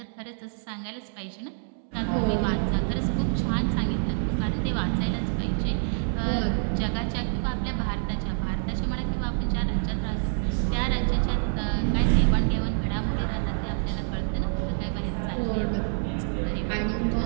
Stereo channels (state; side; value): silent; left; 60 dB below the other